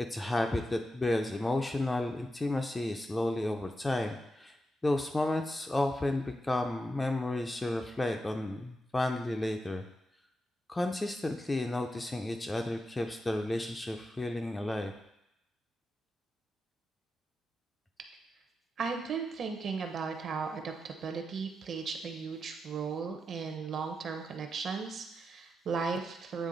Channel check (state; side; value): normal; both; correlation 0.88